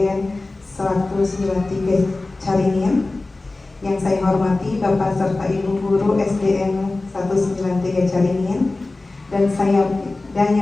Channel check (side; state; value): right; quieter; 3.2 dB